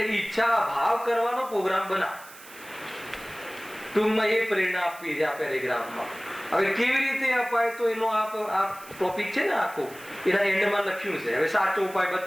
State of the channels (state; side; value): noise; right; hiss, 19 dB below the sound